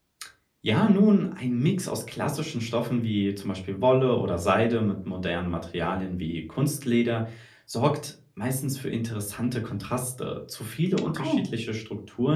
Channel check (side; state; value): both; identical; correlation 1.00